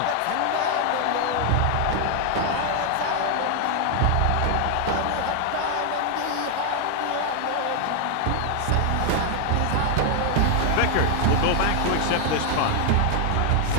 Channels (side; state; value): both; different; correlation 0.00